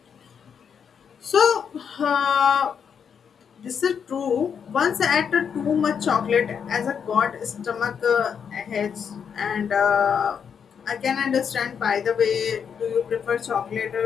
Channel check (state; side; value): quieter; right; 7.2 dB